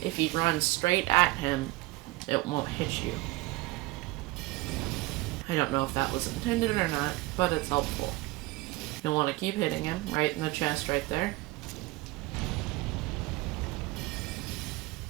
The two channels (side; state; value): left; quieter; 20.4 dB